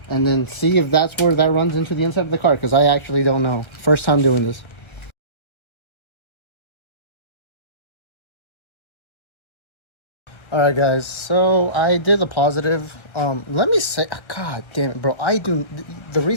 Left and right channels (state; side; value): late; right; 1.3 ms